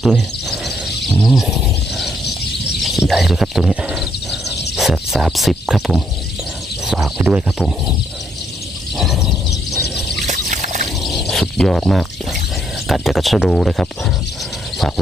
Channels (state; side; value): normal; both; correlation 0.72